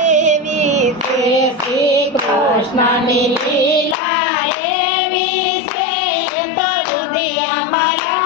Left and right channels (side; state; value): right; drops out; at 4.0 s